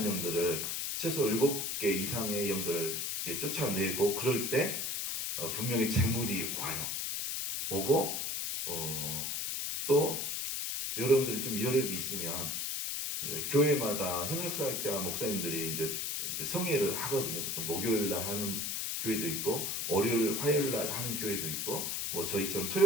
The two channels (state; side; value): noise; left; hiss, 1 dB below the sound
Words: 영들을 최소 7개 이상의 영들을 이렇게 쫓아내고 그럴 때 분명히 재물이 와요. 오고 또 여러분들이 좀 여력이 있으면 교회마다 협력사역자 목사님들이 이제 성회를 하거든요. 보통 목요일날 하는 교회도 있고 월요일, 화요일날 하는 교회도 있고 뭐 저희처럼